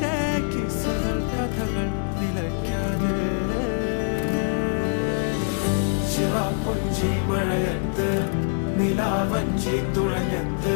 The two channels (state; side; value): silent; right; digital silence